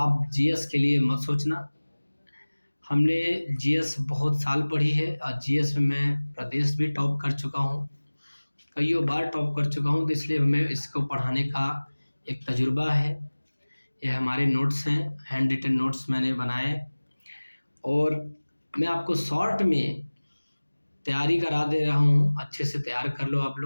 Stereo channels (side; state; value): both; inverted; correlation -1.00